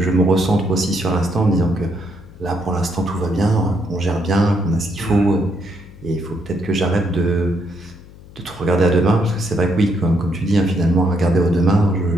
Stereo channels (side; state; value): left; noise; hum, 21 dB below the sound